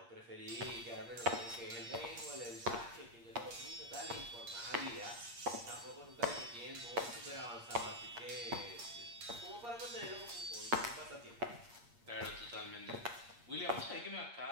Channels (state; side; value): late; left; 8.5 ms